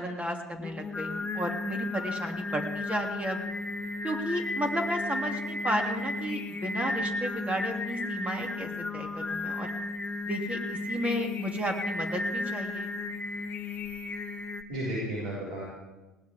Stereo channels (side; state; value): both; normal; correlation 0.69